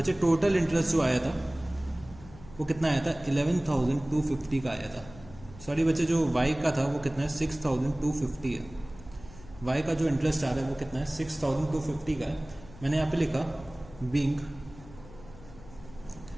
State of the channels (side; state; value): left; noise; hum, 19 dB below the sound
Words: टोटल इंटरेस्ट जो आया था वो कितना आया था, 11,250 का आया था। सॉरी बच्चे, जो वाई का था वो कितना है, 6,250 है। वाई का जो इंटरेस्ट आ रहा है वो कितना है, 6,250 का है। मैंने यहाँ पे लिखा being